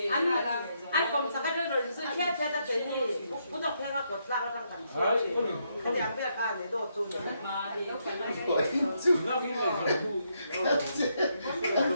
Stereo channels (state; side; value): inverted; both; correlation -0.77